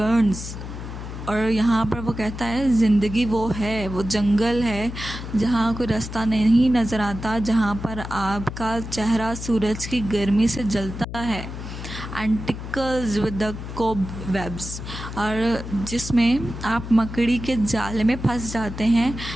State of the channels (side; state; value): left; noise; hum, 9 dB below the sound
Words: और यहाँ पर वो कहता है ज़िंदगी वो है, वो जंगल है जहाँ कोई रास्ता नहीं नज़र आता, जहाँ पर आपका चेहरा सूरज की गर्मी से जलता है। And tickles with the cobwebs. और जिसमें आप मकड़ी के जाले में फंस जाते हैं,